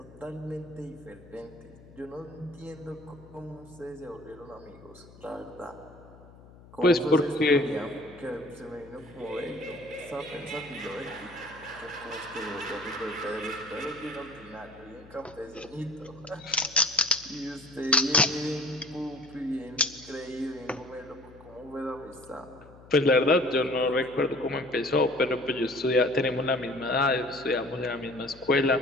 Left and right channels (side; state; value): left; noise; hum, 21 dB below the sound